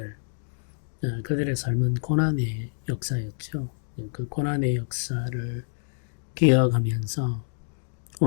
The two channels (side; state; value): right; silent; digital silence